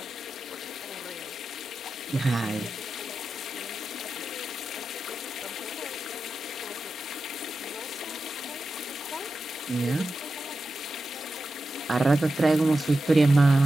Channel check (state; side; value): normal; both; correlation 0.91